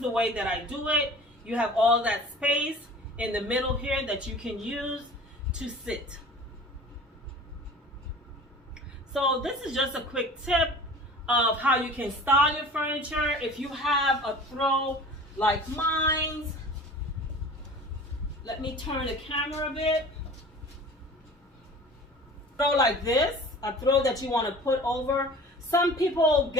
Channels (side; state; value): both; normal; correlation 0.42